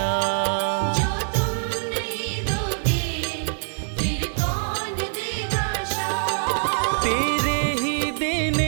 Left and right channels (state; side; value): silent; left; digital silence